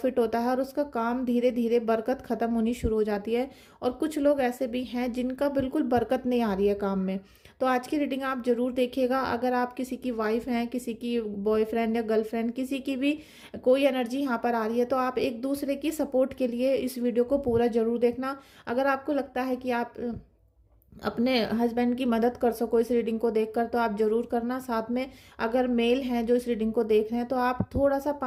होता है और उसका काम धीरे धीरे बरकत खत्म होनी शुरू हो जाती है। और कुछ लोग ऐसे भी हैं जिनका बिल्कुल बरकत नहीं आ रही है काम में। तो आज की रीडिंग आप जरूर देखिएगा। अगर आप किसी की वाइफ हैं, किसी की बॉयफ्रेंड या गर्लफ्रेंड, किसी की भी कोई एनर्जी यहाँ पर आ रही है, तो आप एक दूसरे की सपोर्ट के लिए इस वीडियो को पूरा जरूर देखना। अगर आपको लगता है कि आप अपने हस्बैंड की मदद कर सको इस रीडिंग को देखकर, तो आप जरूर करना। साथ में अगर मेल हैं जो इस रीडिंग को देख रहे हैं, तो आप थोड़ा सा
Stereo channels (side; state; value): both; identical; correlation 1.00